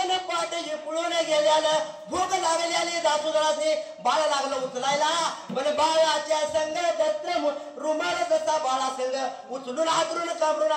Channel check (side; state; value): both; identical; correlation 1.00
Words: पाठ पळून गेल्याला भूक लागलेली दासुदाने बाळ लागलं उचलायला पण बाळाच्या संग दत्र रुमाल जसा बाळा संग उचलून हातरून काबरून